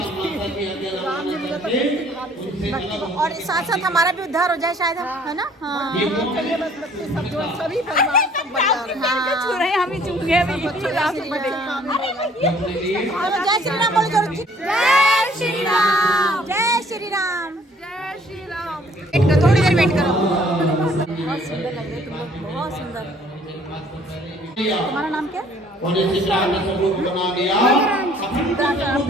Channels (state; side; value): normal; both; correlation 0.58